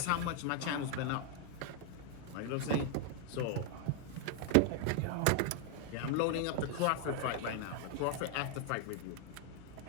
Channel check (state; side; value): different; both; correlation 0.00